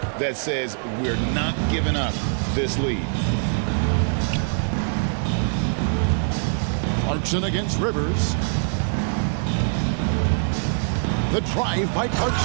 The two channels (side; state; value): left; silent; digital silence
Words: that says we're not giving up this lead. Clarkson against Rivers. The drive by